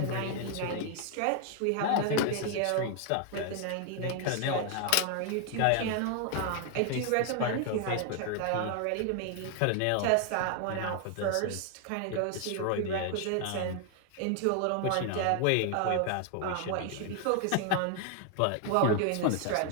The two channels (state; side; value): different; both; correlation 0.00